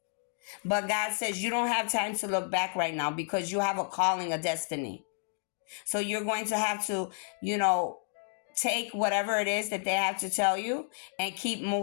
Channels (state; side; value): silent; right; 57 dB below the other